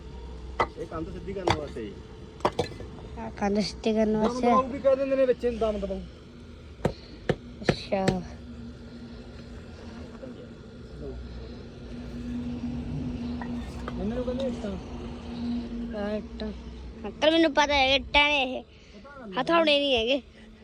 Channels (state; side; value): identical; both; correlation 1.00